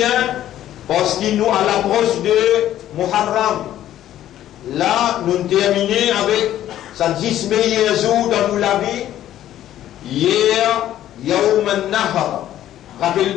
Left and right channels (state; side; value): quieter; right; 12.4 dB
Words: parce qu'il nous à l'approche de Muharram. Là, nous terminons avec sa 10 meilleurs jours dans la vie. Hier, Yawm al-Nahar. Rappelez